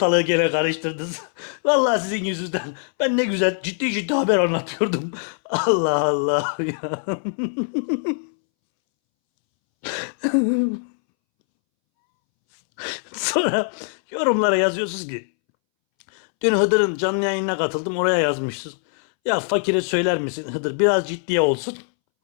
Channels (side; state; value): right; silent; 63 dB below the other